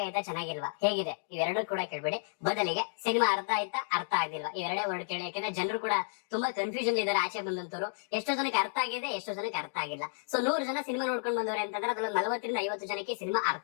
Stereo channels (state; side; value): silent; right; digital silence